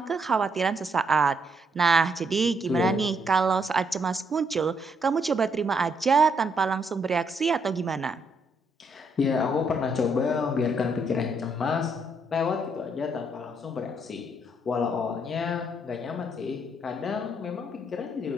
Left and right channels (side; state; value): both; normal; correlation 0.74